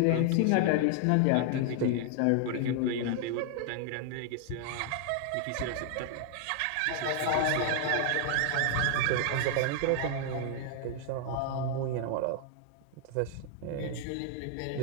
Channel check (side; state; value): both; different; correlation 0.00